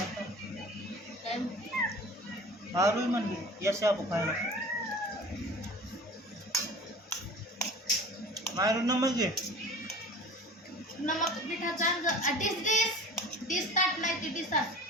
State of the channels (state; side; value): normal; both; correlation 0.40